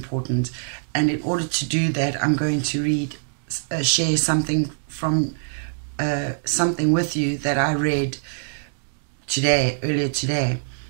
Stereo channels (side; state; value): left; silent; digital silence